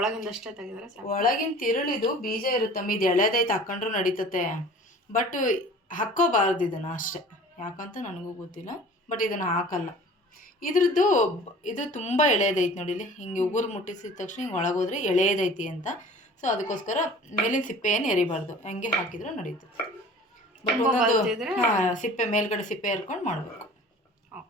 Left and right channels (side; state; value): both; normal; correlation 0.45